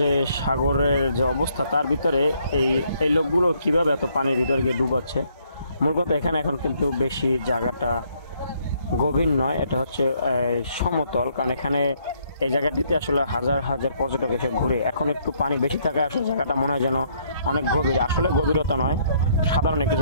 সাগরের যে অবস্থা তার ভিতরে এই এই লোকগুলো কিভাবে এত পানির ভিতরে গিয়ে ডুবাচ্ছে। মূল কথা এখানে এখন কিন্তু বেশি জায়গাটা গভীর নয়, এটা হচ্ছে সমতল, কারণ এখানে এই জায়গাটিতে আসলে হাজার হাজার পর্যটক এসে ঘুরে। এখন একটু পানি বেশি থাকায় আসলে জায়গাটা মনে হয় যেন অনেক গভীর, আসলে গভীরতা নয়, সাধারণ একটু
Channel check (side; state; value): both; inverted; correlation -0.68